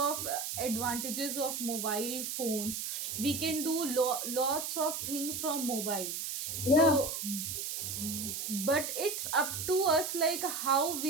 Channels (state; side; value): noise; right; hiss, 4 dB below the sound